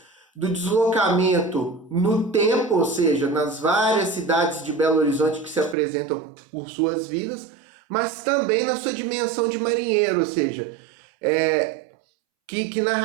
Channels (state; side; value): drops out; left; at 5.8 s